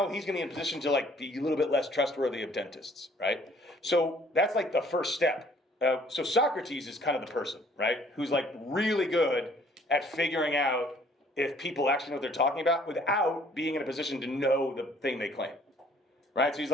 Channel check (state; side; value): normal; both; correlation 0.58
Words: he's going to be in a position to like be a little bit less trustworthy of dentists, right? So that's like the first step. So Socrates is kind of the person, right? Who's like really good at figuring out if people actually know what they're talking about without being in a position to know the thing they claim, right? So he's